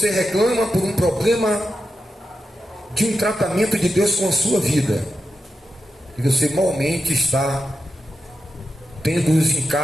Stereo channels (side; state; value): both; normal; correlation 0.89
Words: reclama por um problema de um tratamento de Deus com a sua vida. E você malmente está tendo os